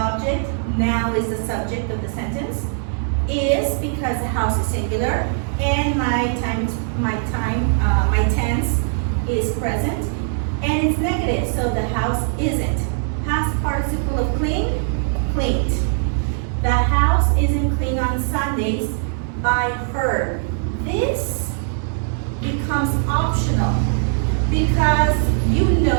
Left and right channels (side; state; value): left; silent; digital silence